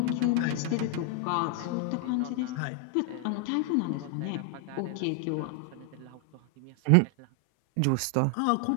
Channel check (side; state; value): both; different; correlation 0.00